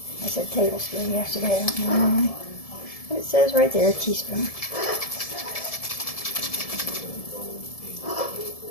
I said tablespoon yesterday, I don't know why. But it says right there, a teaspoon.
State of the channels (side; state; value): right; late; 1.7 ms